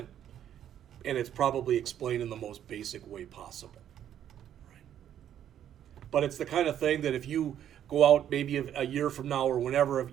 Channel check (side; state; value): left; quieter; 10.3 dB